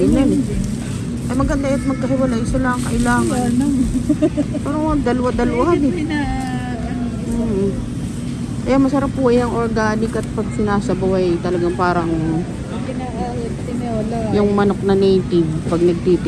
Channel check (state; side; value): identical; both; correlation 1.00